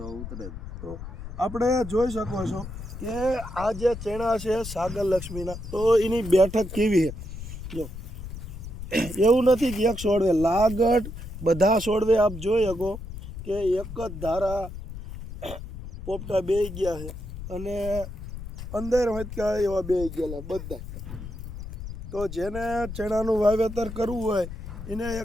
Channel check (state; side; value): noise; left; rumble, 10 dB below the sound